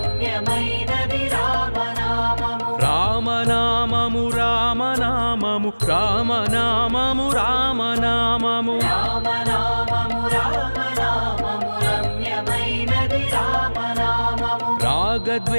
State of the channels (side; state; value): both; inverted; correlation -1.00